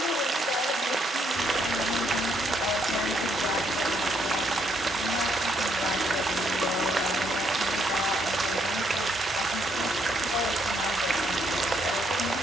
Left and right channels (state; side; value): normal; both; correlation 0.72